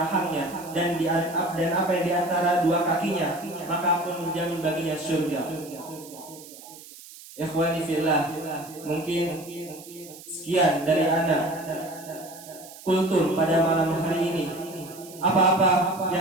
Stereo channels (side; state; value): right; noise; hiss, 18 dB below the sound